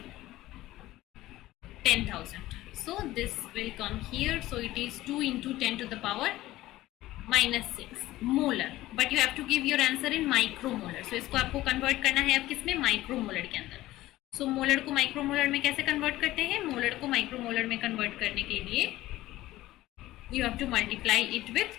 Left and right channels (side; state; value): right; quieter; 16.3 dB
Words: 10,000. So this will come here, so it is 2 into 10 to the power -6 molar, but you have to give your answer in micromolar. So इसको आपको कन्वर्ट करना है अब किसमें? माइक्रोमोलर के अंदर. सो मोलर को माइक्रोमोलर में कैसे कन्वर्ट करते हैं? मोलर को माइक्रोमोलर में कन्वर्ट करने के लिए you have to multiply it with